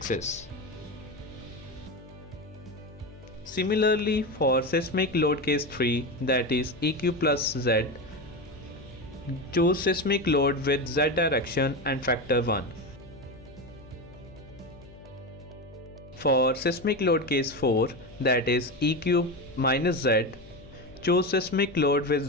Similarly, for seismic load case 3, that is EQ plus Z, choose seismic load with Z direction and factor 1. For seismic load case 4, that is EQ minus Z, choose seismic load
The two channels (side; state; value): left; noise; hum, 20 dB below the sound